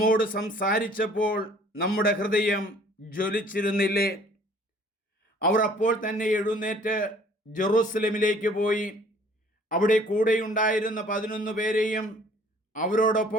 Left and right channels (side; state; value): both; normal; correlation 0.55